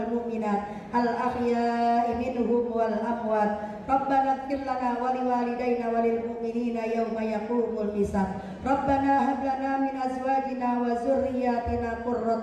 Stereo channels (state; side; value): identical; both; correlation 1.00